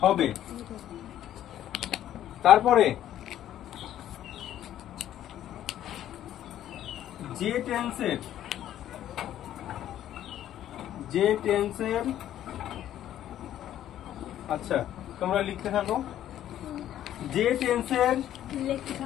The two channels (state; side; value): quieter; right; 11.8 dB